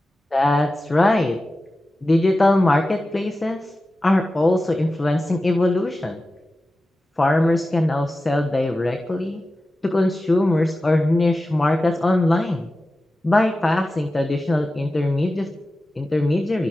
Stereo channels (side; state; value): both; normal; correlation 0.94